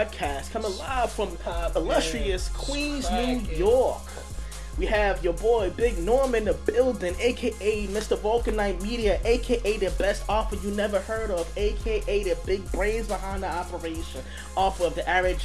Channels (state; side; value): identical; both; correlation 1.00